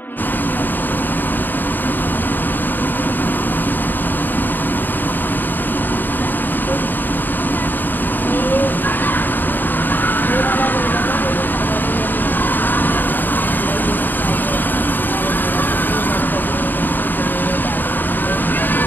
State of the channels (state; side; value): late; right; 0.091 ms